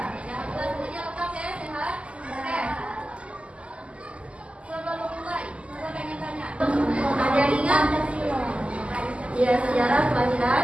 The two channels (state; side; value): late; left; 0.057 ms